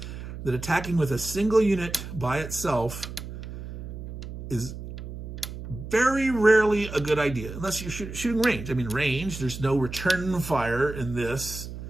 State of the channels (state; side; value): noise; right; hum, 10 dB below the sound